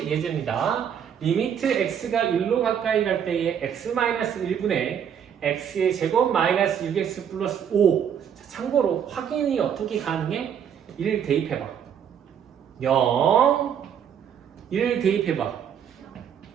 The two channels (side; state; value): left; quieter; 8.4 dB